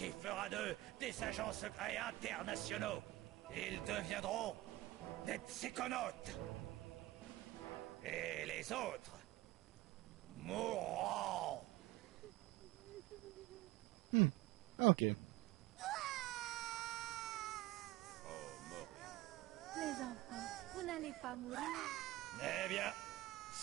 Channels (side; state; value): left; quieter; 17.9 dB